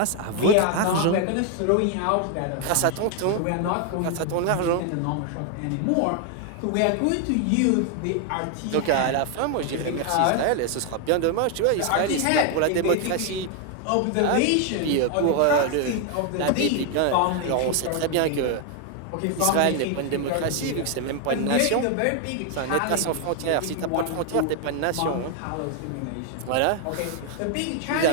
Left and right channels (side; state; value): both; different; correlation 0.00